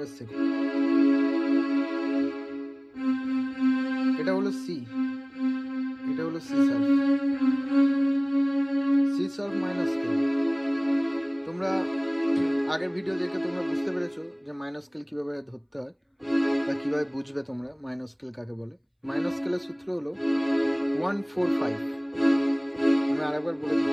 শেখো। এটা হলো সি, এটা হলো C sharp. C sharp minor scale তোমরা আগের ভিডিও দেখে তোমরা বুঝতে পেরেছো যে মাইনর স্কেল কিভাবে ধরতে হয় বা কিভাবে বুঝবে তোমরা মাইনর স্কেল কাকে বলে। মাইনর স্কেলের সূত্র হলো 145। আমি আরেকবার বলে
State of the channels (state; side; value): identical; both; correlation 1.00